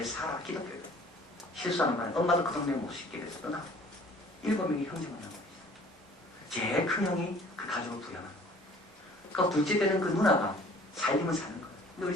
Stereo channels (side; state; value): both; normal; correlation 0.52